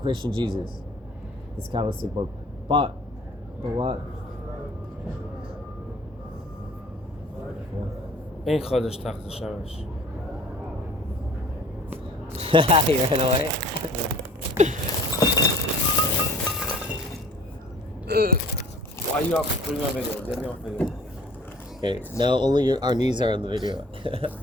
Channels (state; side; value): normal; both; correlation 0.49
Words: Jesus. This Kabbalistic book. But what? Ein Chodesh Tachta Shamash. He ran away. Why are you off? Put me on video. Get me off video. Okay, now only our knees are on the video.